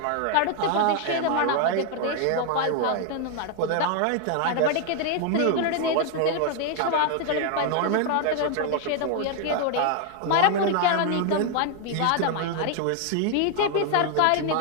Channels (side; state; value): both; different; correlation 0.00